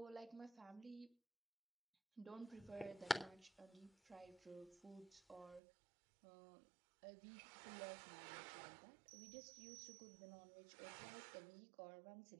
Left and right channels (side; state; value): left; drops out; at 5.6 s